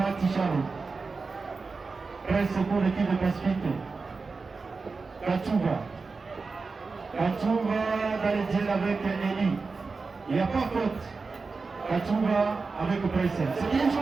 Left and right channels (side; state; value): left; quieter; 4.3 dB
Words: Presse pour l'équipe de Pacifique. Kachouva dans le duel avec Eli. Il n'y a pas faute. Kachouva avec Presse. C'est bien